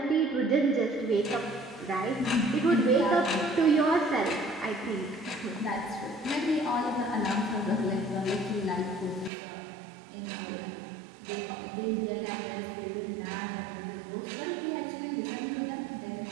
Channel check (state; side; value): drops out; left; at 9.3 s